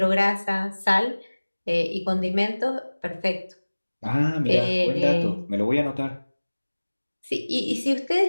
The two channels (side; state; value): both; inverted; correlation -1.00